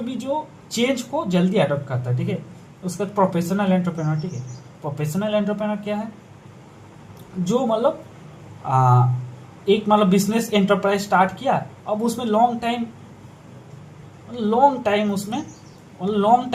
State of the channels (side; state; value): both; identical; correlation 1.00